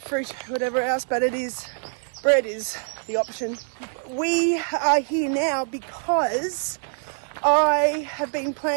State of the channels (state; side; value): silent; left; digital silence